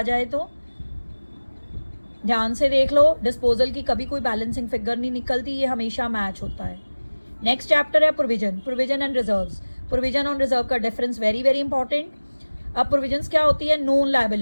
जाए तो ध्यान से देख लो, डिस्पोजल की कभी कोई बैलेंसिंग फिगर नहीं निकलती, ये हमेशा मैच होता है। नेक्स्ट चैप्टर है provision, provision and reserves. Provision और रिजर्व का डिफरेंस वेरी वेरी इंपॉर्टेंट। अब प्रोविजंस क्या होती है? नोन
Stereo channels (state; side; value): inverted; both; correlation -1.00